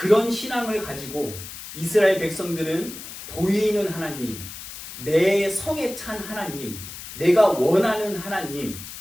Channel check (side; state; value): left; noise; hiss, 12 dB below the sound